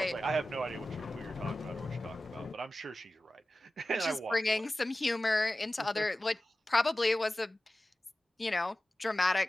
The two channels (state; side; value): normal; both; correlation 0.95